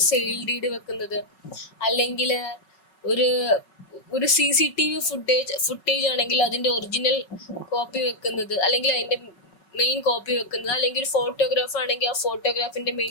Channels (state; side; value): late; right; 5.4 ms